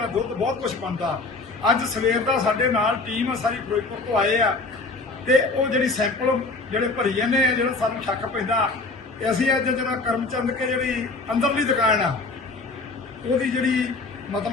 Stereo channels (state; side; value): quieter; right; 3.5 dB